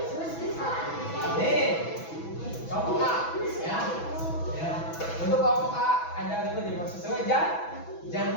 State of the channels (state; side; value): late; right; 6.1 ms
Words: Nih. Kelompok A, ya. Ya. Untuk kelompok A ada ikut di sesuai